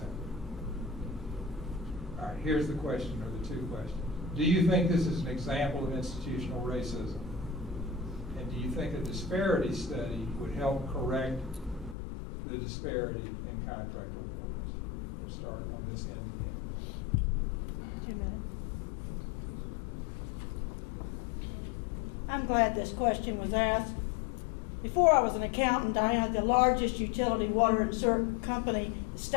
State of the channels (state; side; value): drops out; right; at 12.0 s